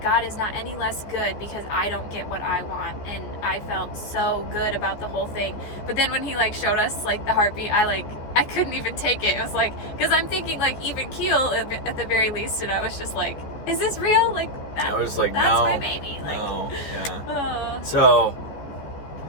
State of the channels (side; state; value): right; late; 14 ms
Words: is not any less good because I don't get what I want. And I felt so good about the whole thing. But then when he showed us the heartbeat, I couldn't even take it. It was because I'm thinking even keel at the very least. And I was just like, is this real? I was like, that's no, my baby. no, yeah. So,